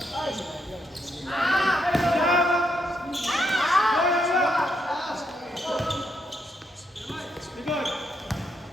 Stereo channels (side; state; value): both; normal; correlation 0.78